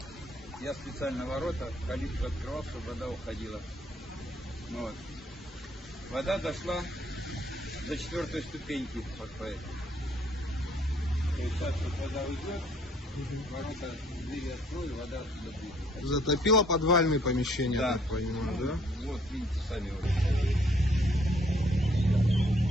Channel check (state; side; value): normal; both; correlation 0.63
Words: я специально ворота, калитку открывал, чтобы вода уходила. Вот. Вода дошла до 4-й ступеньки, вот по этой. То есть сейчас вот вода уйдет, ворота, двери открою, вода отсюда будет. Затопило подвальные помещения, да. Так понимаю, да? Вот, видите, сами вот.